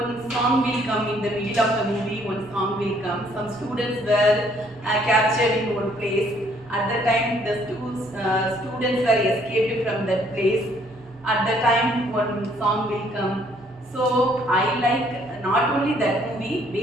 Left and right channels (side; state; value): both; normal; correlation 0.64